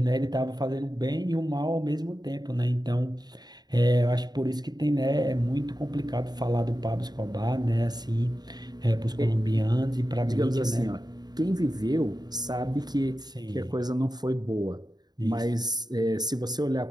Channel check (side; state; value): left; late; 0.20 ms